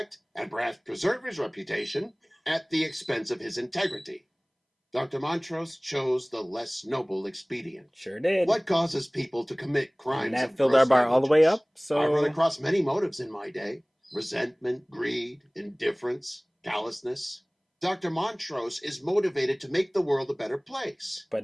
and perhaps preserve his reputation at the expense of his integrity. Dr. Montrose chose the less noble expedient. Sure did. What causes people to commit crimes? And that filled our bar all the way up. So I run across many motives in my day. Resentment, greed, indifference, callousness. Dr. Montrose is motivated to make the world a better place.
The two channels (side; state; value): both; identical; correlation 1.00